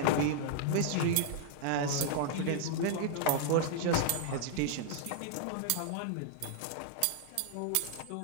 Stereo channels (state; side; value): different; both; correlation -0.01